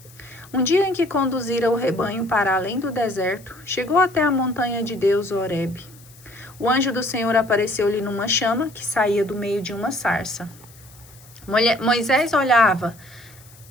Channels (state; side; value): noise; left; hiss, 24 dB below the sound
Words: Um dia em que conduzira o rebanho para além do deserto, chegou até a montanha de Deus, Horebe. O anjo do Senhor apareceu-lhe numa chama que saía do meio de uma sarça. Moisés olhava.